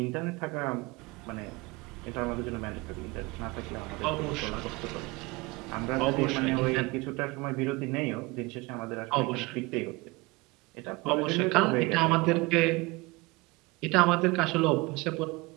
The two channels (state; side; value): quieter; left; 24.1 dB